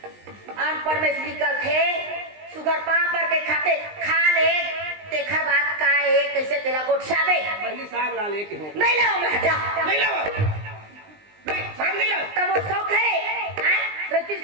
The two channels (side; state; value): left; late; 20 ms